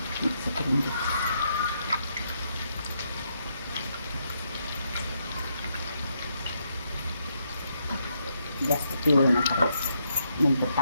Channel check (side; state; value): both; inverted; correlation -0.78